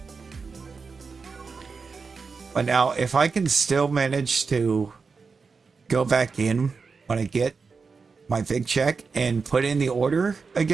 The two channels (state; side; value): quieter; left; 4.9 dB